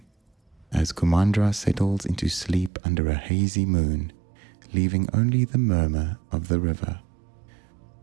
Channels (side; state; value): left; drops out; at 2.7 s